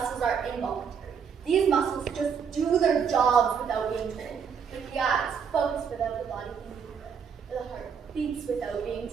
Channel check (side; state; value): left; quieter; 6.9 dB